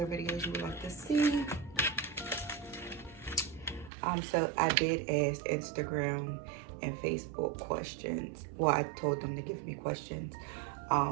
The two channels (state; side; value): drops out; left; at 3.9 s